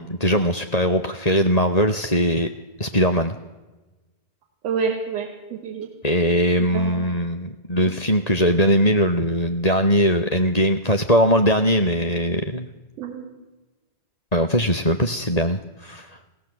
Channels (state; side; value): late; right; 1.8 ms